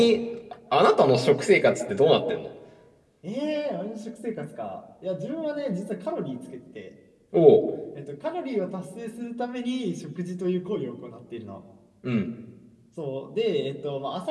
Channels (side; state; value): both; identical; correlation 1.00